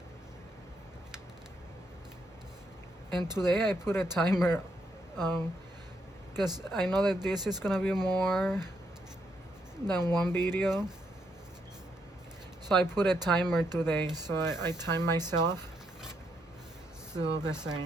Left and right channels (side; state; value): both; normal; correlation 0.77